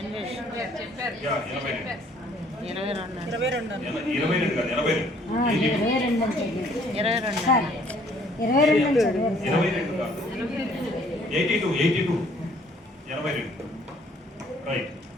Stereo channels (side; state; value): both; normal; correlation 0.61